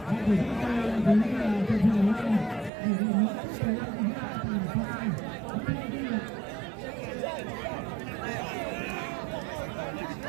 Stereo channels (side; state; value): left; drops out; at 2.7 s